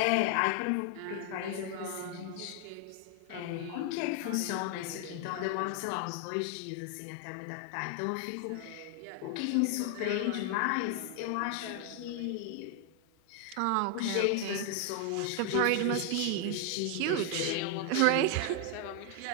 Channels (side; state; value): both; different; correlation 0.00